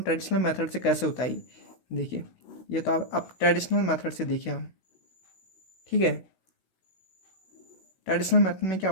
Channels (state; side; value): late; right; 16 ms